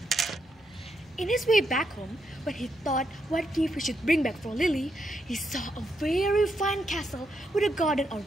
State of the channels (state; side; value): normal; both; correlation 0.80